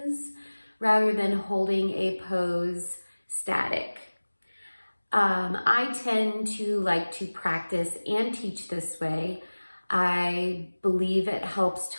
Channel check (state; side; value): inverted; both; correlation -1.00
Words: rather than holding a pose static. I tend to like to practice and teach this way. I believe it helps